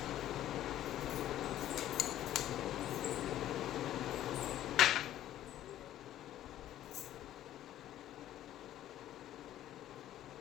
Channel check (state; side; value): quieter; right; 12.3 dB